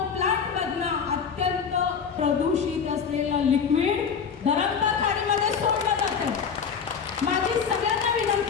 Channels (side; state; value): right; quieter; 6.5 dB